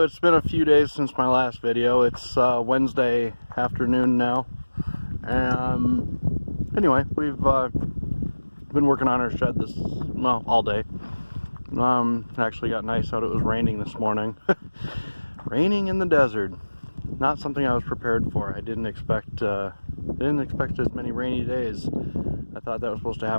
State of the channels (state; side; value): inverted; both; correlation -1.00